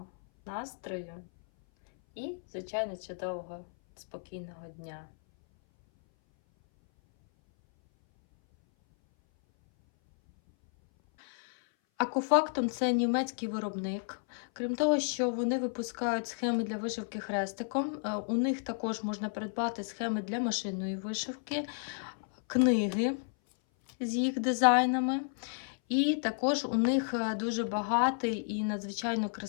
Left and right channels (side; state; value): right; silent; 56 dB below the other